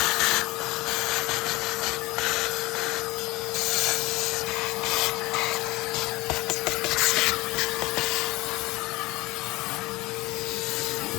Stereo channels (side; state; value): right; quieter; 21.2 dB